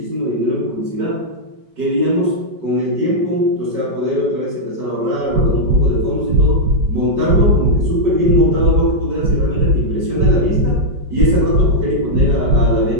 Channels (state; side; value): late; left; 5.1 ms